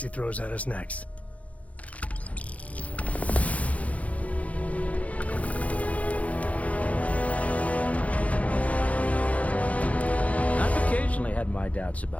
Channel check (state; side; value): late; right; 0.067 ms